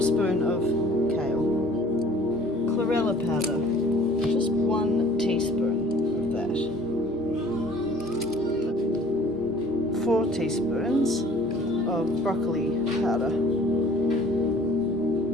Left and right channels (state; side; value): normal; both; correlation 0.52